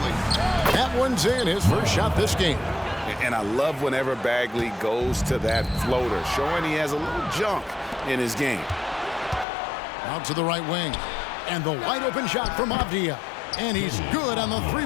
That one's in, his first shot this game. And I love whenever Bagley goes to that floater, showing he has a little junk in his game. Out to the right wing. And the wide open shot from Avdia. And he's good on the 3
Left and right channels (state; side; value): drops out; right; at 9.5 s